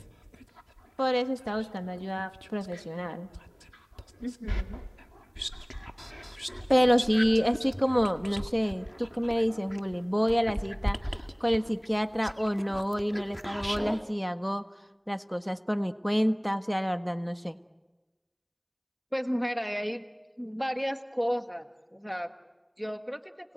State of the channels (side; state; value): both; identical; correlation 1.00